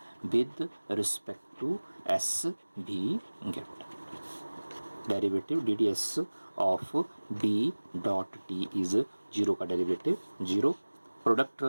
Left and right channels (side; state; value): both; inverted; correlation -1.00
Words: with respect to S we get derivative DDS of B dot T is 0 का डेरिवेटिव 0. प्रोडक्ट